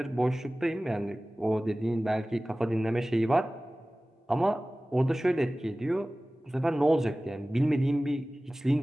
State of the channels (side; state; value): both; normal; correlation 0.97